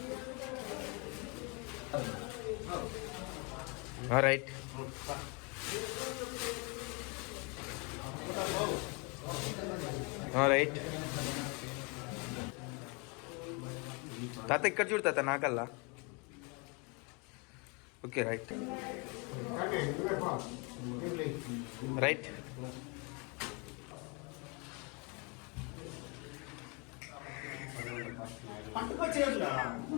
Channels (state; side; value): quieter; right; 31.7 dB